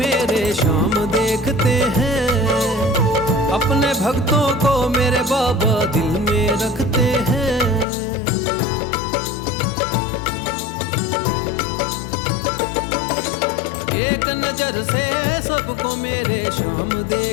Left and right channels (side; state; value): right; drops out; at 7.9 s